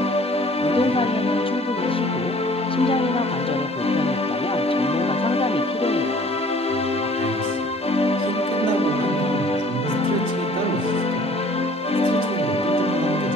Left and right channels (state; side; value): normal; both; correlation 0.53